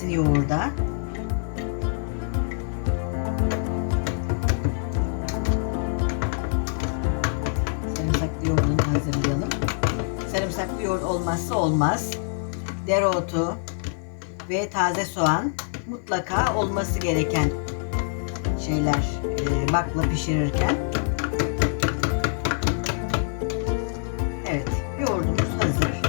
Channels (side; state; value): right; silent; digital silence